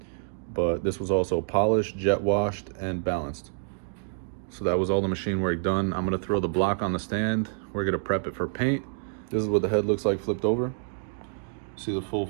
But this was also polished, jet washed, and balanced. So that was all the machine work done. I'm gonna throw the block on the stand. We're gonna prep it for paint. This is what the head looks like flipped over. See the full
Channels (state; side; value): silent; left; digital silence